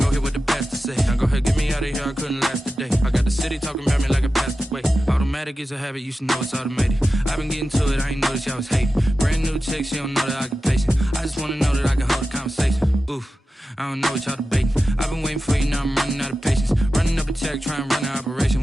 here with the best to say. Now go ahead, get me out of here, I couldn't last today. I got the city talking about me like I passed away. Automatic is a habit, you should know it's automated. I've been getting to it, I ain't noticed y'all was hating. Brand new chick, she don't know the occupation. I just wanna know that I can hold a conversation. Oof, I don't know what y'all debating. I've been waiting for you, now I'm running out of patience. Running up a check, trying to run an operation.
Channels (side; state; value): both; normal; correlation 0.93